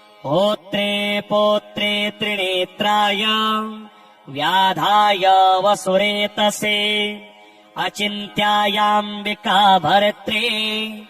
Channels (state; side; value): identical; both; correlation 1.00